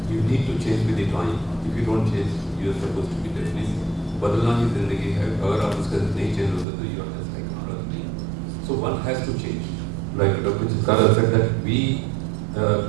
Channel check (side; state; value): left; drops out; at 6.7 s